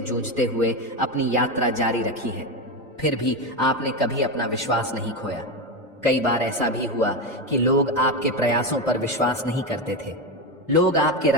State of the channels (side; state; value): both; normal; correlation 0.14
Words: हुए अपनी यात्रा जारी रखी है। फिर भी आपने कभी अपना विश्वास नहीं खोया। कई बार ऐसा भी हुआ कि लोग आपके प्रयासों पर विश्वास नहीं करते थे। लोग आपके